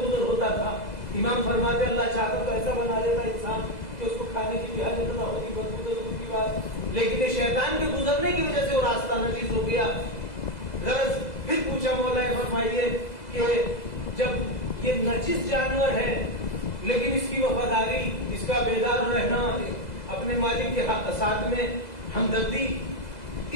گزر ہوتا تھا. امام فرماتے اللہ چاہتا تو ایسا بنا دیتا انسان کہ اس کو کھانے کی بھی حاجت نہ ہوتی، بدبو تو دور کی بات، لیکن یہ شیطان کے گزرنے کی وجہ سے وہ راستہ نجس ہو گیا. غرض پھر پوچھا مولا فرمائیے کہ جب یہ نجس جانور ہے لیکن اس کی وفاداری، اس کا بیدار رہنا، اپنے مالک کے ساتھ میں ہمدردی،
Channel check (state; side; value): late; right; 2.0 ms